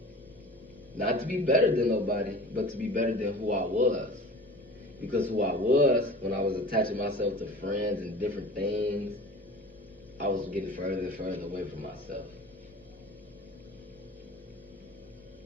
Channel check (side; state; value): both; normal; correlation 0.39